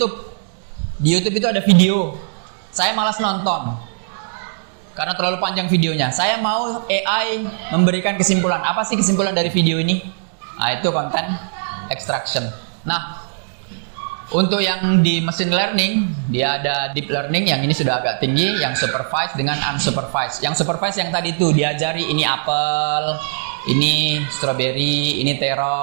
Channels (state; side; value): silent; left; digital silence